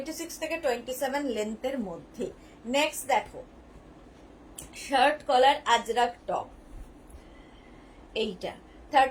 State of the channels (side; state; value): both; identical; correlation 1.00